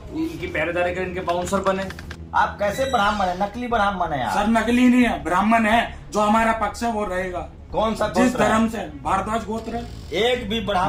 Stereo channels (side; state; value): both; identical; correlation 1.00